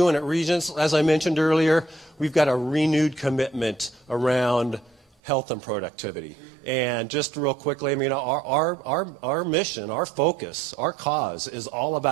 at Regents, as I mentioned earlier, we've got a renewed commitment around health and productivity. And just real quickly, I mean, our mission, our focus, our cause is all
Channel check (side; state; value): left; drops out; at 5.1 s